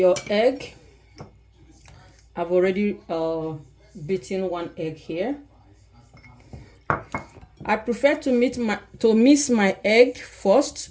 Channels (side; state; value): both; identical; correlation 1.00